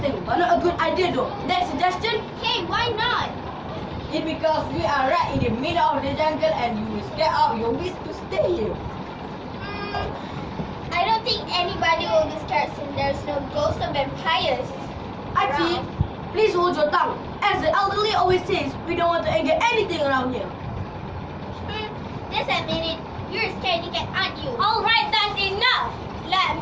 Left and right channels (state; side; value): identical; both; correlation 1.00